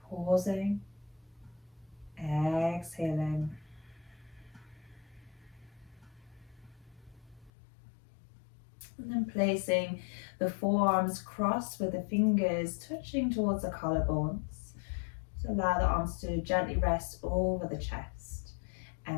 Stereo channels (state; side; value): drops out; right; at 7.5 s